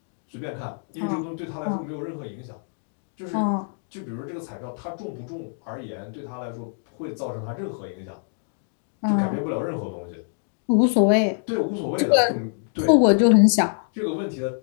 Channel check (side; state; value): right; silent; digital silence